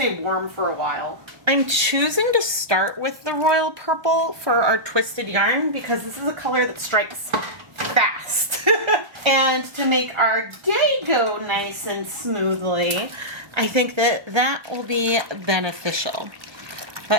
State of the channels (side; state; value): left; late; 1.3 ms